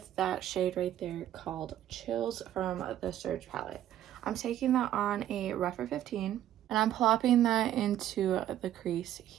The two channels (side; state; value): left; quieter; 12.0 dB